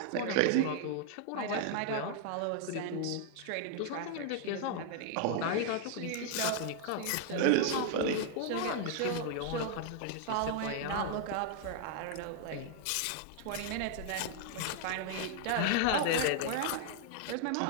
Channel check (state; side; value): different; both; correlation 0.00